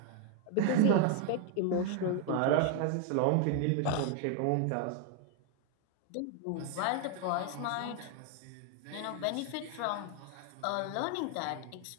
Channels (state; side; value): different; both; correlation 0.00